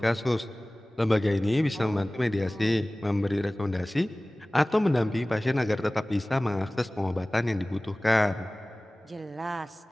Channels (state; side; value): normal; both; correlation 0.98